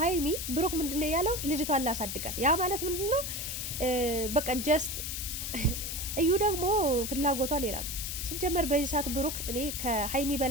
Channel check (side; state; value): left; noise; hiss, 4 dB below the sound